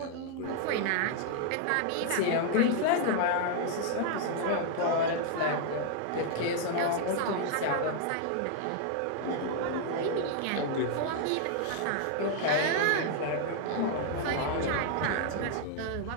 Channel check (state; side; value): different; both; correlation 0.00